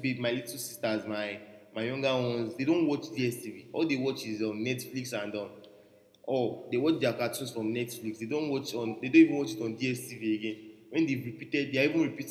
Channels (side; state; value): both; identical; correlation 1.00